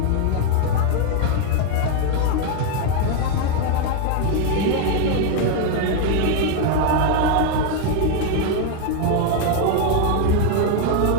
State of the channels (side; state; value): both; different; correlation 0.01